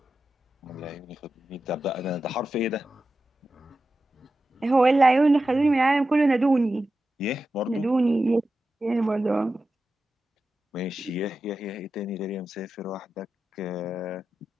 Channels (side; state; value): both; normal; correlation 0.91